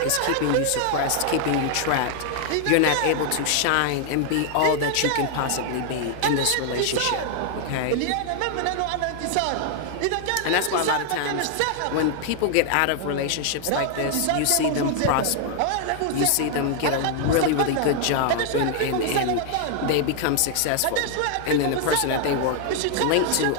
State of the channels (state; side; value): different; both; correlation 0.00